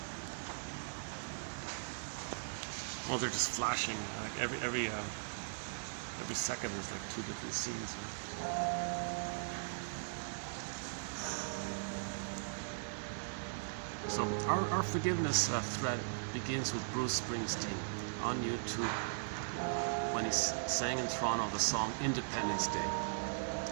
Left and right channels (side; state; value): left; silent; 52 dB below the other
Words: Oh, they're just flashing. Like every second, there's like 2 different scenes. So our forgiveness thread begins with Bruce Springsteen on YouTube when he sang in Toronto the song Independence Day.